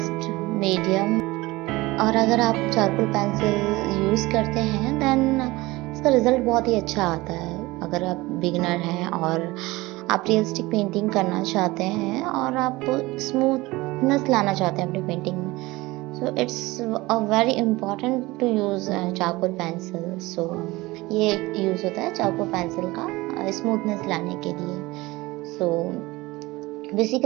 medium. और अगर आप charcoal pencil use करते हैं then इसका result बहुत ही अच्छा आता है। अगर आप बिगिनर हैं और आप रियलिस्टिक पेंटिंग करना चाहते हैं और आप स्मूथनेस लाना चाहते हैं अपनी पेंटिंग में, so it's a very important to use charcoal pencil. So ये यूज़ होता है चारकोल पेंसिल का स्मूथनेस लाने के लिए। सो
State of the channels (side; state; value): left; quieter; 20.8 dB